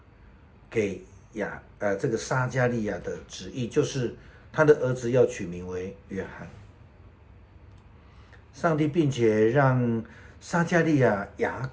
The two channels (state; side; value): identical; both; correlation 1.00